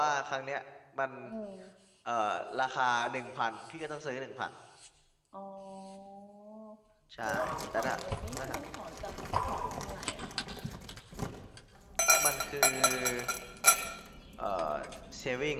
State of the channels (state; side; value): identical; both; correlation 1.00